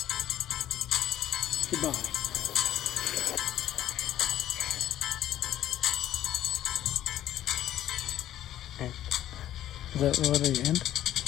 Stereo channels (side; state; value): right; quieter; 12.4 dB